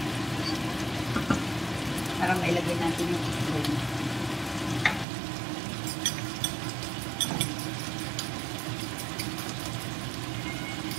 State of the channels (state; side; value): drops out; left; at 5.1 s